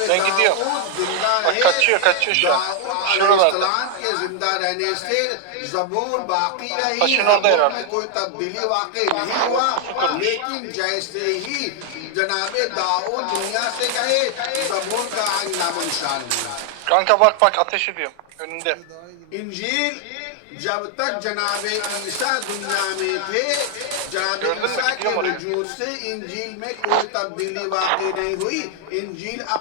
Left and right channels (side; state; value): both; different; correlation 0.00